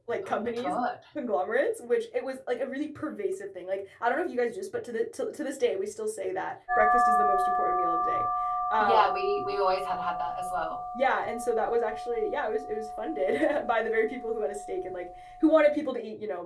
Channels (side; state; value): both; identical; correlation 1.00